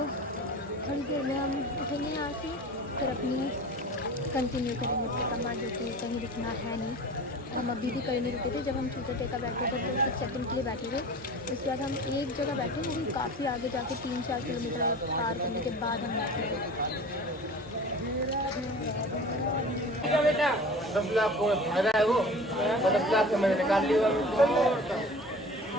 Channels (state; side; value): normal; both; correlation 0.39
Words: थोड़ी देर में हम उठेंगे यहाँ से, फिर अपनी कंटिन्यू करेंगे परिक्रमा, जो कि कहीं रुकना है नहीं। हम अभी भी कहीं नहीं रुके थे, जब हम चूतर टेका बैठे थे तो कुछ सेकंड के लिए बैठे थे, उसके बाद हम एक जगह बैठे, वो भी काफ़ी आगे जाके 3-4 किलोमीटर पार करने के बाद हम बैठे थे। बेटा 10 लाख को फायदा है, वो 10 लाख से मैंने निकाल लिया।